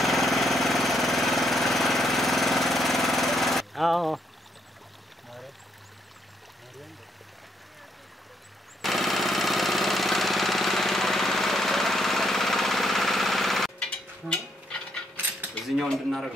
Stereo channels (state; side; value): normal; both; correlation 0.75